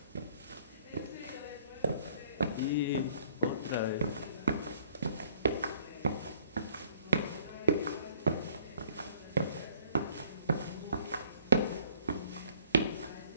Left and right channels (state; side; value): inverted; both; correlation -0.58